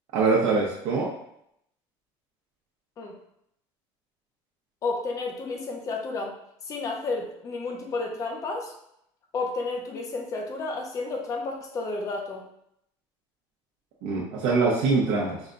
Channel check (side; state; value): both; normal; correlation 0.41